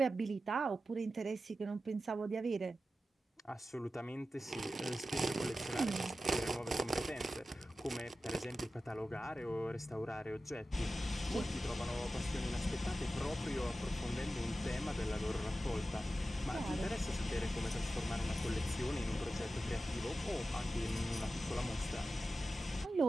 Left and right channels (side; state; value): both; normal; correlation 0.93